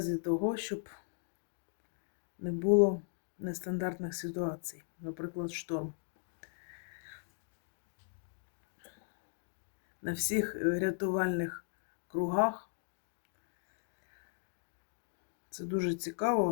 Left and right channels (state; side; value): silent; right; digital silence